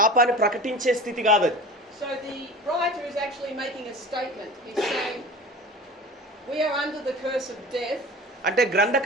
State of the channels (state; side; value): normal; both; correlation 0.37